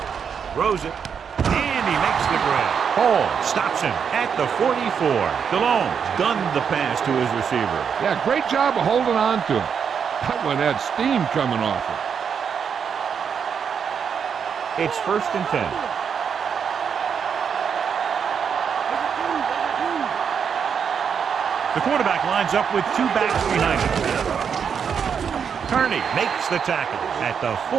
Throws it. And he makes the grab. Hall stops him at the 44. DeLone gunned the pass to his receiver. Yeah, great job of holding on to him. That one had steam coming off it. It's 1st and 10. The quarterback lines up with two backs behind him. Kearney makes the tackle at the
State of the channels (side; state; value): left; quieter; 7.0 dB